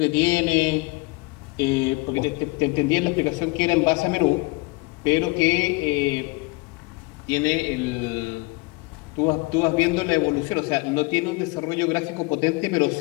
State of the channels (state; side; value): quieter; right; 25.9 dB